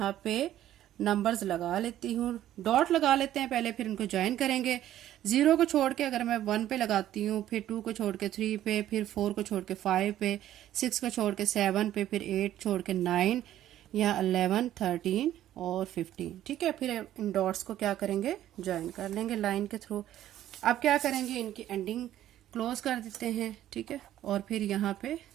पे नंबर्स लगा लेती हूँ, डॉट लगा लेते हैं पहले, फिर इनको ज्वाइन करेंगे। 0 को छोड़ के अगर मैं 1 पे लगाती हूँ, फिर 2 को छोड़ के 3 पे, फिर 4 को छोड़ के 5 पे, 6 को छोड़ के 7 पे, फिर 8 छोड़ के 9, यहाँ 11 13 और 15। ठीक है, फिर इन डॉट्स को क्या करेंगे, ज्वाइन कर लेंगे लाइन के थ्रू। अब क्या करेंगे, इनकी एंडिंग क्लोज कर देते हैं। ठीक है, और फिर यहाँ पे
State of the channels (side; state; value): left; quieter; 12.5 dB